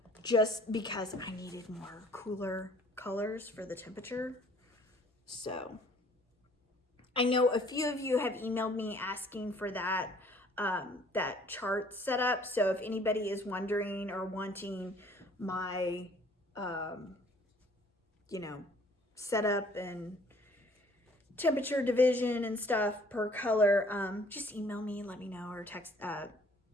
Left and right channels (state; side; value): normal; both; correlation 0.57